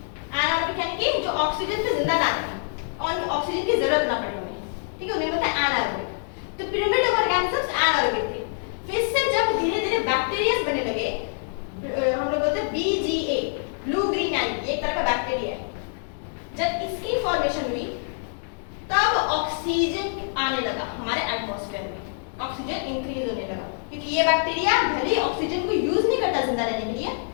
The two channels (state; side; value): silent; right; digital silence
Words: एनारोबिक यानी कि जो ऑक्सीजन पे जिंदा ना रहे और ऑक्सीजन की जरूरत ना पड़े उन्हें, ठीक है, उन्हें बताया एनारोबिक। तो प्रिमिटिव ऑर्गेनिजम्स एनारोबिक थे। फिर से जब धीरे धीरे बैक्टीरिया बनने लगे, हम लोग बोलते हैं BGA, ब्लू ग्रीन एल्गी, एक तरह का बैक्टीरिया है। जब इसकी फॉर्मेशन हुई तब ऑक्सीजन आने लगा हमारे एटमॉस्फेयर में। ऑक्सीजन इंक्रीज होने लगा, क्योंकि ये बैक्टीरिया भले ऑक्सीजन को यूज नहीं करता जिंदा रहने के लिए,